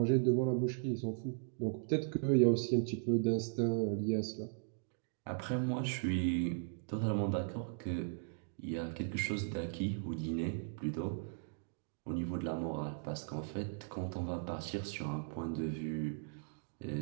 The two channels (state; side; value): silent; left; digital silence